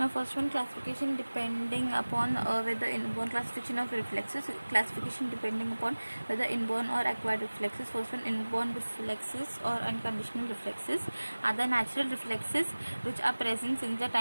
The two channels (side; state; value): both; inverted; correlation -1.00